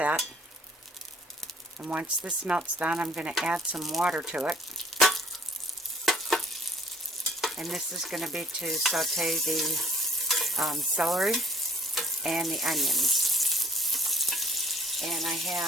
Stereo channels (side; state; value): both; normal; correlation 0.53